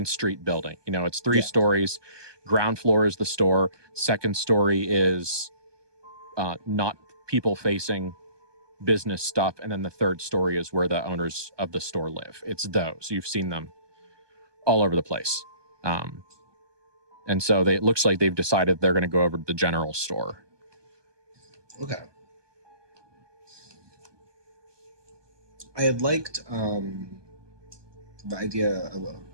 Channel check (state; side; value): late; left; 1.2 ms